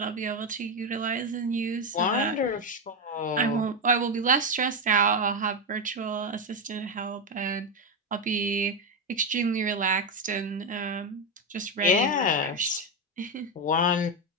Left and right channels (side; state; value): both; normal; correlation 0.09